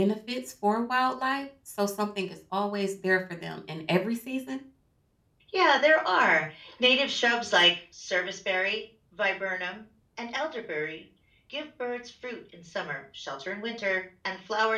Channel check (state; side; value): identical; both; correlation 1.00